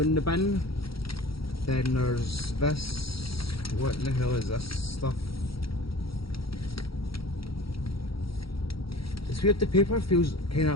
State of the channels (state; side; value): late; right; 0.75 ms